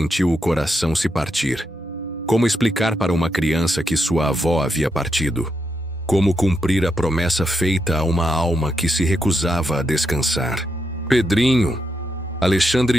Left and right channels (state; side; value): normal; both; correlation 0.82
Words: o coração se partir. Como explicar para uma criança que sua avó havia partido? Como cumprir a promessa feita a uma alma que se recusava a descansar? Pedrinho,